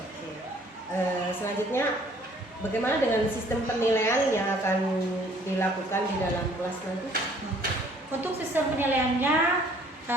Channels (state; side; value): normal; both; correlation 0.58